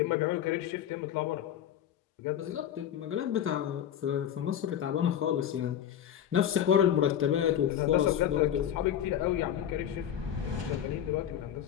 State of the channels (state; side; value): quieter; right; 10.1 dB